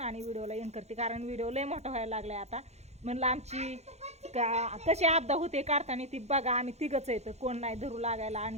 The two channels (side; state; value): left; late; 0.32 ms